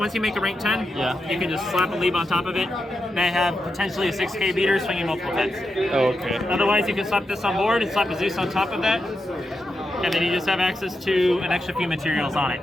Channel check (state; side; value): normal; both; correlation 0.87